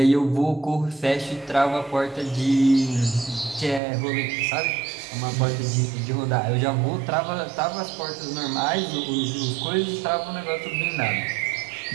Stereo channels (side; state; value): left; drops out; at 3.8 s